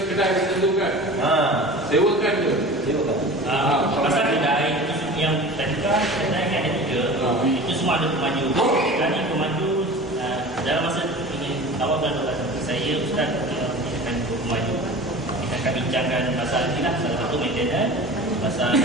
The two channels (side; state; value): both; normal; correlation 0.37